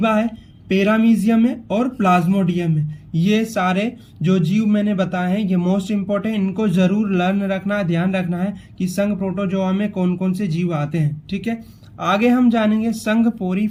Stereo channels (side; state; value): both; identical; correlation 1.00